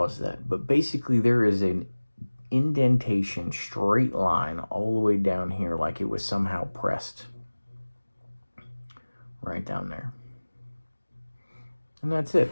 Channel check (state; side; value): inverted; both; correlation -1.00